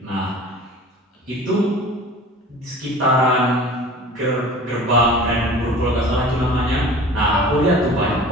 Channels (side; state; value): both; normal; correlation 0.41